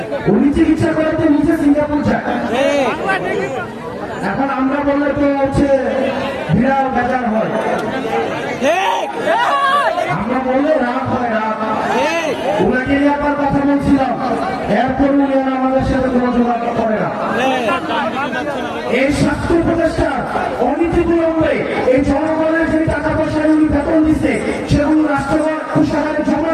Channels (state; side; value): identical; both; correlation 1.00